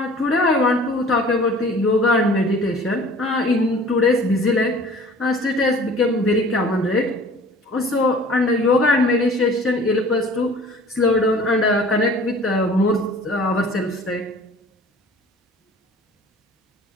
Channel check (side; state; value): both; normal; correlation 0.48